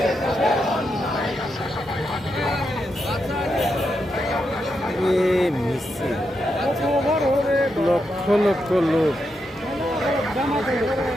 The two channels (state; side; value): normal; both; correlation 0.84